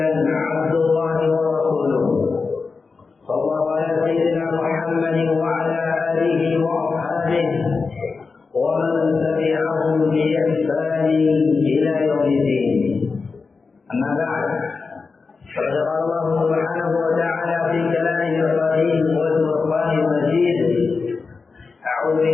عبد الله ورسوله صلى الله على سيدنا محمد وعلى اله واصحابه ومن تبعهم باحسان الى يوم الدين. اما بعد فقد قال الله سبحانه وتعالى في كلامه القديم والفرقان المجيد: اعوذ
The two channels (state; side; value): quieter; right; 4.5 dB